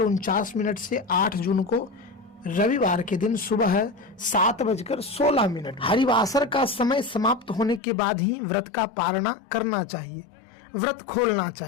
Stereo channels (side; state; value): right; drops out; at 7.8 s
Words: से 8 जून को रविवार के दिन सुबह 7:16। हरिवासर का समय समाप्त होने के बाद ही व्रत का पारणा करना चाहिए, व्रत खोलना